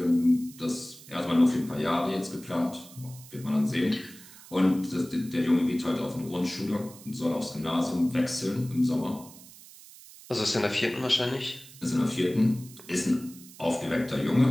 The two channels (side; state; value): right; noise; hiss, 19 dB below the sound